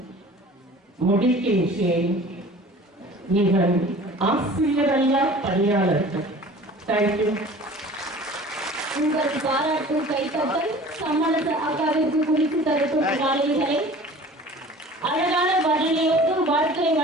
முடிக்கின்றேன். இவன் ஆசிரியரல்லா பணியாளர்கள். தேங்க்யூ. உங்கள் பாராட்டு கைத்தட்டல் சம்மரச அக்காவிற்கு குறித்து தரட்டும். மாணவிகளை அழகான பதிலையோடு வாழ்த்துரை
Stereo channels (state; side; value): normal; both; correlation 0.44